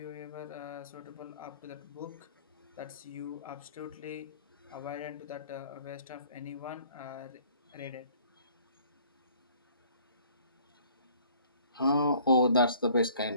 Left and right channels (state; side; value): inverted; both; correlation -0.56